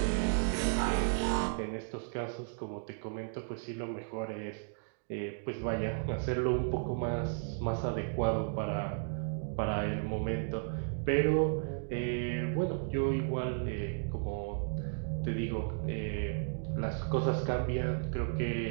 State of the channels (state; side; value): silent; left; digital silence